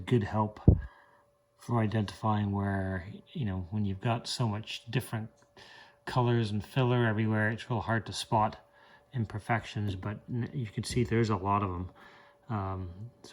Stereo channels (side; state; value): both; identical; correlation 1.00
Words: help for identifying where, you know, when you've got so much different colors and filler everywhere, it's real hard to spot imperfections, but you can see there's a lot of them.